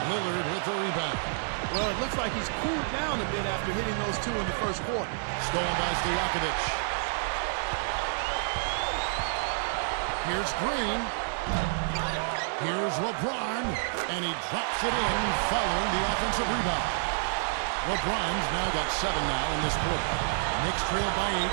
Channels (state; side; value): silent; left; digital silence